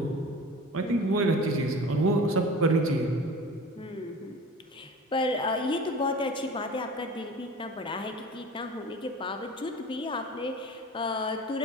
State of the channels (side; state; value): both; normal; correlation 0.38